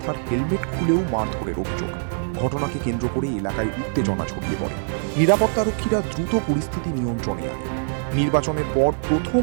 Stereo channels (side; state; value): left; silent; digital silence